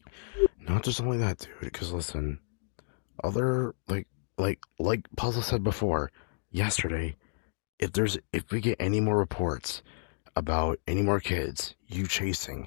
Not just only that, dude. Because listen, other like Puzzle said before, yesterday, if we get any more reports about any more kids you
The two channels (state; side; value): silent; right; digital silence